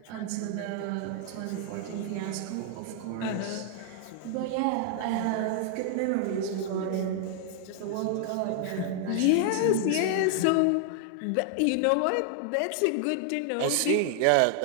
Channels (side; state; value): both; different; correlation 0.00